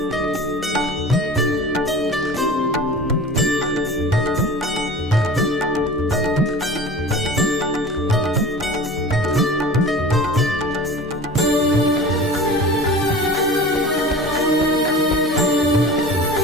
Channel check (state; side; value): normal; both; correlation 0.38